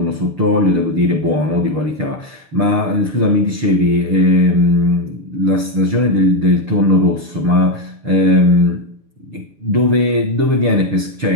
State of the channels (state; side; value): late; left; 6.7 ms